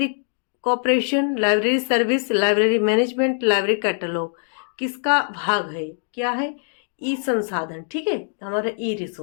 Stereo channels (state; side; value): silent; right; digital silence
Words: cooperation, library service, library management, library catalogue. किसका भाग है, क्या है, ई संसाधन। ठीक है, हमारा ई